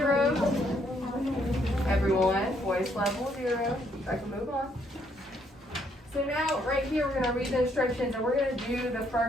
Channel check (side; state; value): both; normal; correlation 0.71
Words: Everyone, voice level 0. I can move on. So now, right here, we're going to read the instructions, and we're going to do the